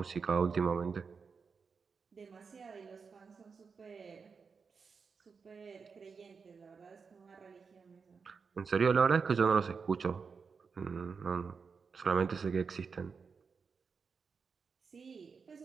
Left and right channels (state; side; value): quieter; left; 5.4 dB